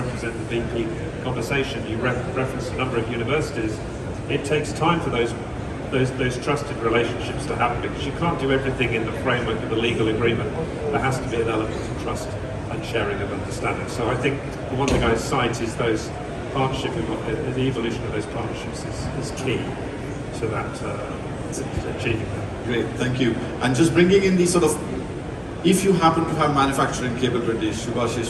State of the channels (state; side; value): identical; both; correlation 1.00